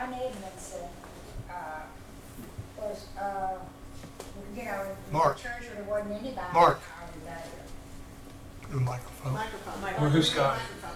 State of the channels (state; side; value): identical; both; correlation 1.00